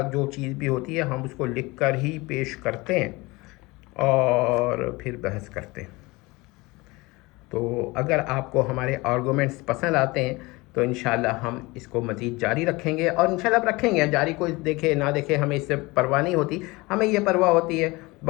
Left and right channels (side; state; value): right; quieter; 23.1 dB